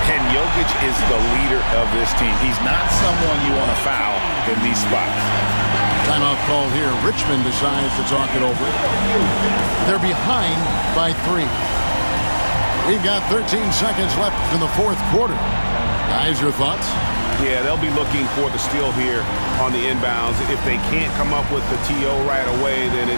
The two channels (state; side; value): inverted; both; correlation -1.00